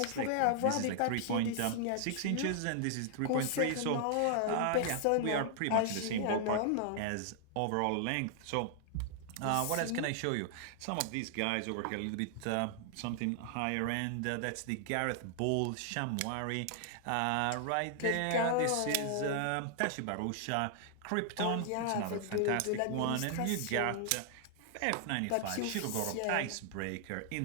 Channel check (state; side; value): different; both; correlation -0.01